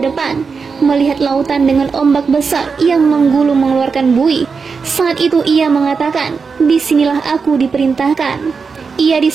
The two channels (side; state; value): left; quieter; 5.2 dB